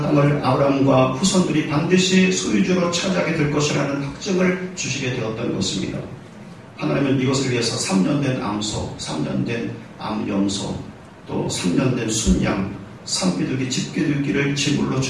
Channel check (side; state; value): both; identical; correlation 1.00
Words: 땅을 아브라함과 후손들이 반드시 소유주로 차지하게 될 것이라는 확증을 주시게 되었던 것입니다. 하나님은 이것을 위해서 3년 된 암소, 3년 된 암염소, 또 3년 된 순양, 산비둘기, 집비둘기를 제물로